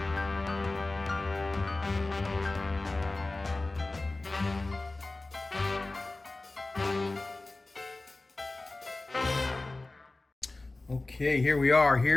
Okay, here we are.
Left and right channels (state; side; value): quieter; right; 3.1 dB